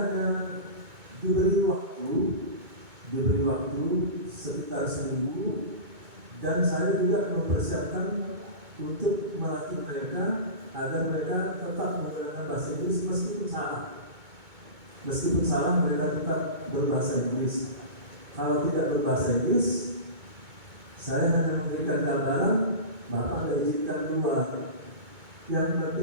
diberi waktu sekitar seminggu, dan saya juga mempersiapkan untuk melatih mereka agar mereka tetap menggunakan bahasa Inggris meskipun salah mereka tetap berbahasa Inggris. Kalau tidak berbahasa Inggris, saya hanya memberikan gambaran, Bapak izinkan keluar. Yang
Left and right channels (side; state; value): left; late; 2.2 ms